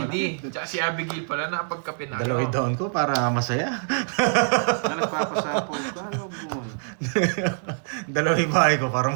Tsaka si Abigail pala, nakapagkape na. Dalaway down ko para masaya. Na nagpapasapo ka, ano mo? Dalaway bahay ko para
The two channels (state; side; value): silent; left; 57 dB below the other